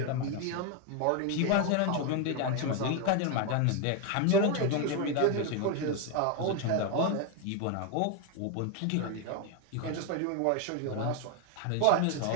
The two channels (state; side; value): different; both; correlation 0.01